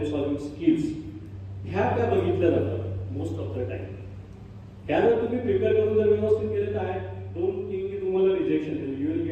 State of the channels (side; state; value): both; identical; correlation 1.00